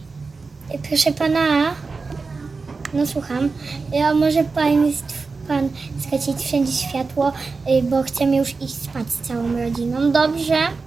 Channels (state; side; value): quieter; left; 4.3 dB